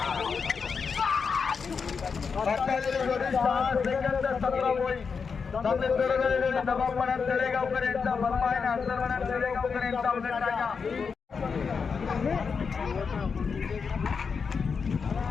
6 सेकंद 17 पॉईंट चांगले जोरात दबावपणात तळेगावकर यांचा बर्मा आणि अंतरमनात तळेगावकर यांचा उलट टाका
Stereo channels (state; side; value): quieter; right; 5.6 dB